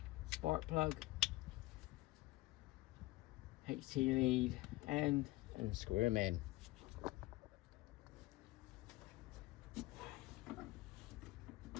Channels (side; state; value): right; quieter; 19.3 dB